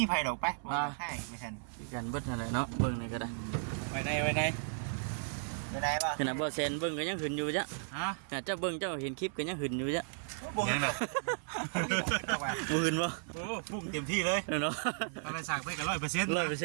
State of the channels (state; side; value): silent; left; 55 dB below the other